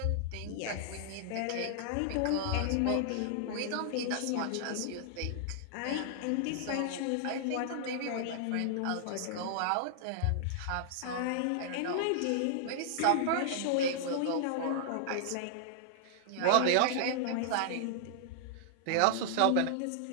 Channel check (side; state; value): both; different; correlation -0.01